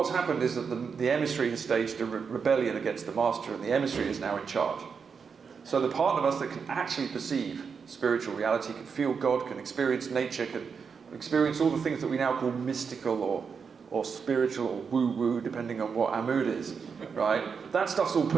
happened is that the emissary has staged a rebellion against the master, and the emissary is now in charge. So the part of us that can actually perceive spiritual reality, can feel God, can experience nature, can experience all the things that we now call mystical or spiritual or woo-woo, depending on what our mood is, right? That stuff's all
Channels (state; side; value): quieter; left; 5.9 dB